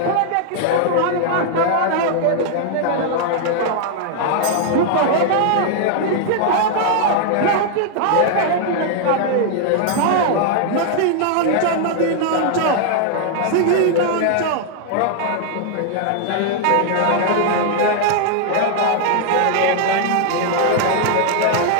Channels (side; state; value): both; different; correlation 0.00